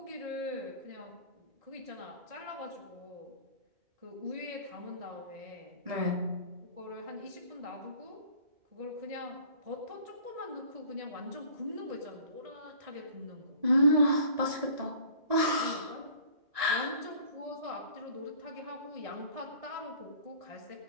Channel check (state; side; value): late; left; 1.9 ms